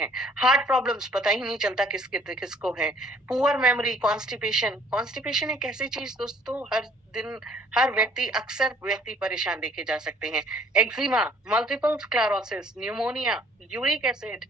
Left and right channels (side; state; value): both; normal; correlation 0.59